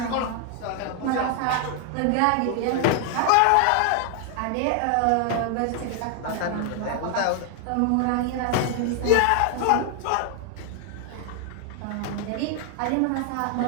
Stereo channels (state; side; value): different; both; correlation 0.00